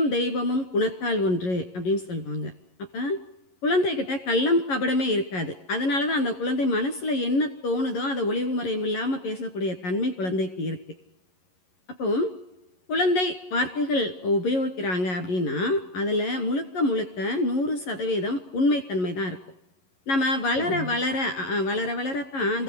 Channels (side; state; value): right; late; 11 ms